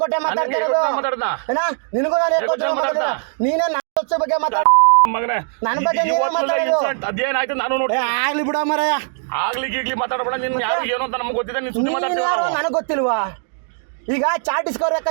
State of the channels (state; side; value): silent; left; digital silence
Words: ಕೊಟ್ಟೆ ಮಾತಾಡ್ತಿರೋದು. ನಿನಗೂ ನಾನು ಕೊಟ್ಟೆ ನೀನೇ ನನ್ನ ಬಗ್ಗೆ ಮಾತಾಡ ಮಗನೇ ನನ್ನ ಬಗ್ಗೆ ಅದೇನಾಯ್ತು ನಾನು ನೋಡಿ ಆಗ್ಲಿ ಬಿಡ ಮರಯ್ಯ. ಆಗ್ಲಿ ಮಾತಾಡಬೇಡ. ನೀನ್ ಯಾರು ಏನು ಅಂತ ನಮ್ಗೆ ಗೊತ್ತಿದೆ. ನೀನ್ ಸುದ್ದಿ ಮಾತಾಡ್ತೀವಿ ನನಗೆ ಗೊತ್ತಿಲ್ವಾ? ಈಗ ಚಾಟ್ ಇಸ್ಕೋಬೇಕ